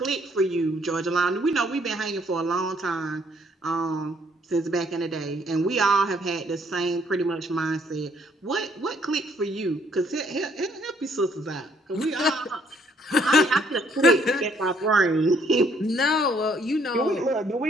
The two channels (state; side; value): normal; both; correlation 0.66